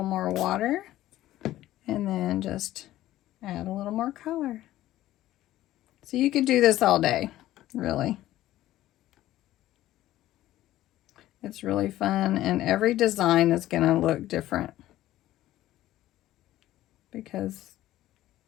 more water, and then just add a little more color. So you could do this all day, really. It's really fun, and every design is going to look different because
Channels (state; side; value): quieter; right; 14.6 dB